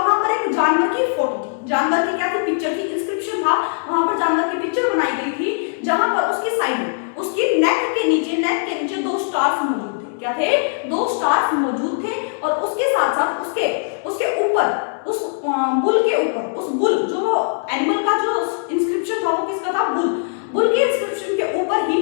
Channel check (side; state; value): right; silent; digital silence